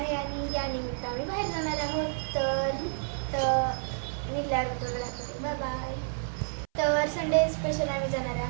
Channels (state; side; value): silent; left; 58 dB below the other